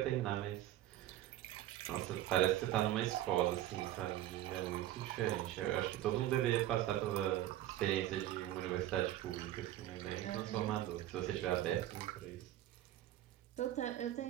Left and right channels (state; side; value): quieter; left; 13.5 dB